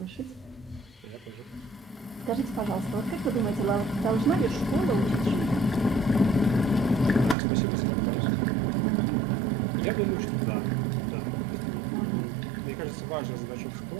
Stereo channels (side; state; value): left; drops out; at 7.4 s